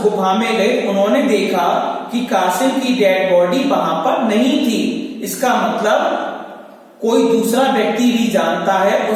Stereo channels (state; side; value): identical; both; correlation 1.00